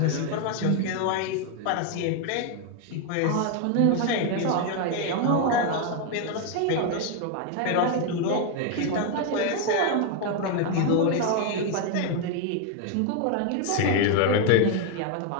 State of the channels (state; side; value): different; both; correlation 0.01